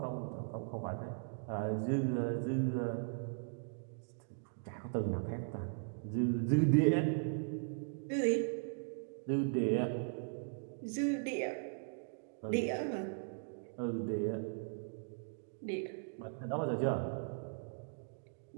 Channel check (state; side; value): silent; left; digital silence